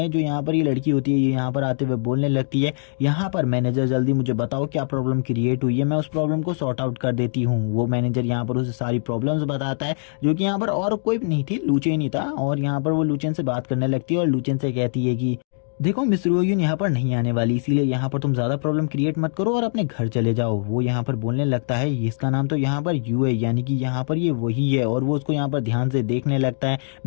जो यहाँ पर ये लड़की होती है, ये यहाँ पर आते हुए बोलने लगती है यहाँ पर मैनेजर जल्दी मुझे बताओ क्या प्रॉब्लम क्रिएट हुई है, मैं उस प्रॉब्लम को सॉर्ट आउट कर देती हूँ। वो मैनेजर यहाँ पर उसे सारी प्रॉब्लम्स बताता है, जो कि यहाँ पर और कोई नहीं थी, लूचेन ही था। और यहाँ पर वो लूचेन से बात करने लगती है और लूचेन से कहती है कि देखो मिस रोयून यहाँ पर नहीं आने वाली, इसीलिए यहाँ पर तुम ज्यादा प्रॉब्लम क्रिएट मत करो और अपने घर चले जाओ। वो यहाँ पर बोलने लगता है इसका नाम तो यहाँ पर यू है, यानी कि यहाँ पर ये वही है, और वो उसको यहाँ पर ध्यान से देखने लगता है।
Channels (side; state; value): right; silent; 64 dB below the other